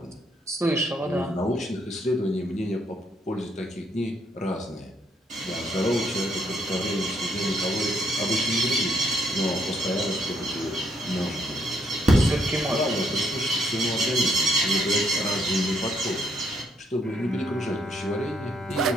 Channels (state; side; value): normal; both; correlation 0.71